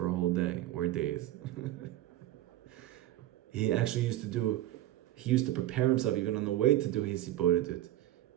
a whole day or days. He actually used to prepare himself even on the way to do his hibodedut.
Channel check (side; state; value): left; quieter; 14.2 dB